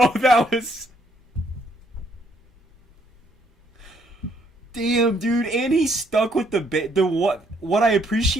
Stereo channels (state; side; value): normal; both; correlation 0.69